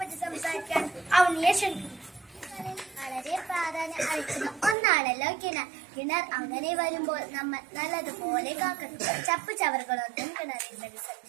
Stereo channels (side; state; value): left; drops out; at 4.8 s